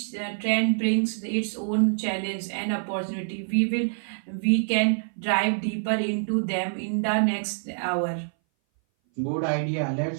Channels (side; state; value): left; silent; 58 dB below the other